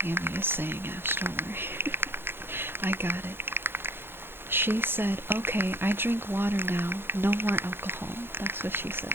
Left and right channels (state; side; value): late; left; 0.11 ms